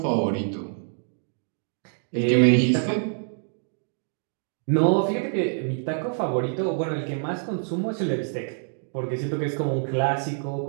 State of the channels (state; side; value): silent; left; digital silence